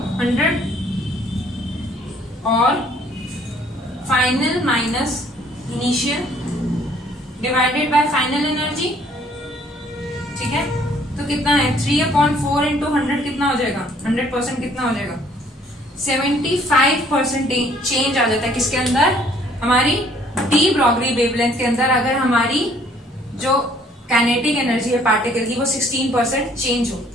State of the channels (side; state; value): both; normal; correlation 0.61